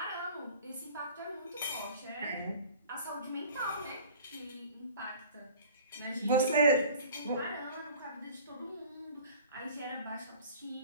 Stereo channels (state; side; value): inverted; both; correlation -0.45